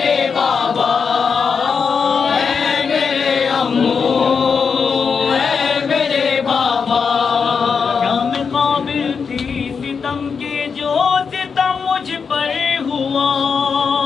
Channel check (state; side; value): quieter; right; 5.8 dB